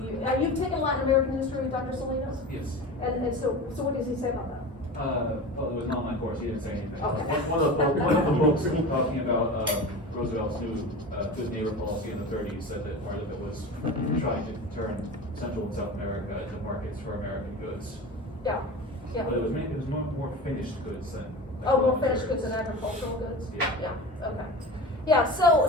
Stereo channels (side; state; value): both; normal; correlation 0.31